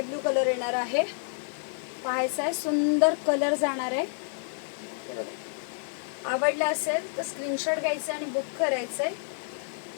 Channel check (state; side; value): silent; right; digital silence